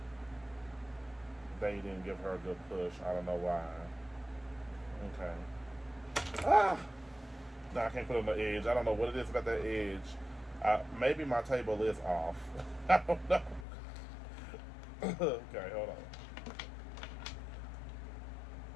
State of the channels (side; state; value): right; drops out; at 13.7 s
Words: They didn't give her a good push. I don't know why. Okay. No, I can't put it on the edge. I don't know what it is about that edge. Maybe my table is off. I don't know. Okay, hold on.